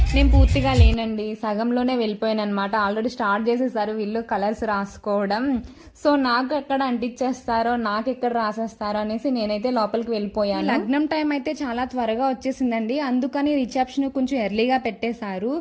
నేను పూర్తిగా లేనండి, సగంలోనే వెళ్ళిపోయాను అనమాట. ఆల్రెడీ స్టార్ట్ చేసేసారు వీళ్ళు కలర్స్ రాసుకోవడం. సో నాకు ఎక్కడ అంటించేస్తారో, నాకు ఎక్కడ రాసేస్తారో అనేసి నేనైతే లోపలికి వెళ్ళిపోయాను. లగ్నం టైం అయితే చాలా త్వరగా వచ్చేసిందండి, అందుకని రిసెప్షన్ కొంచెం ఎర్లీగా పెట్టేశారు.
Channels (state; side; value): identical; both; correlation 1.00